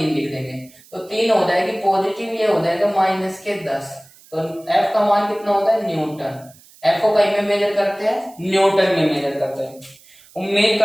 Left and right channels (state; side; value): noise; right; hiss, 26 dB below the sound